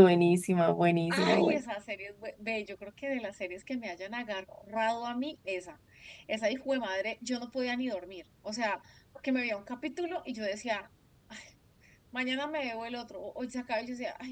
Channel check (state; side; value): identical; both; correlation 1.00